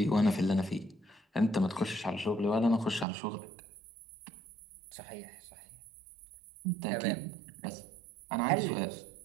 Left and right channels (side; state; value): left; drops out; at 3.1 s